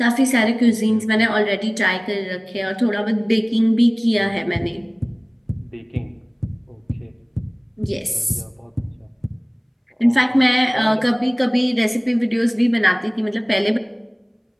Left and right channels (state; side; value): identical; both; correlation 1.00